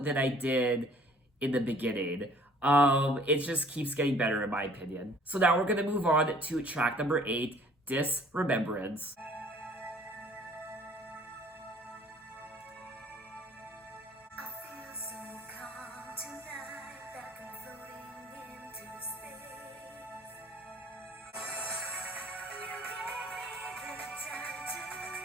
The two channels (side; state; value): both; normal; correlation 0.55